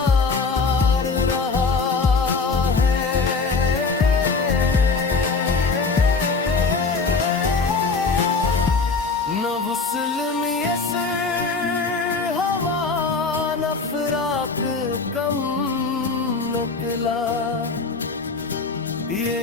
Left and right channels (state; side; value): quieter; right; 4.4 dB